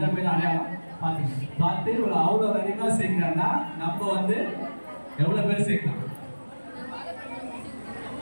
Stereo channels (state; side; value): inverted; both; correlation -1.00